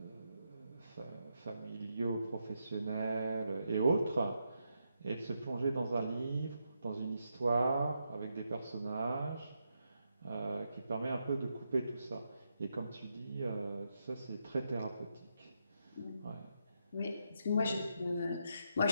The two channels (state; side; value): inverted; both; correlation -0.82